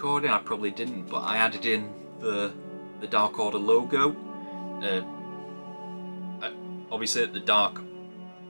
I probably didn't, but I added in the Dark Order logo. Obviously the Dark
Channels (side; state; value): both; inverted; correlation -1.00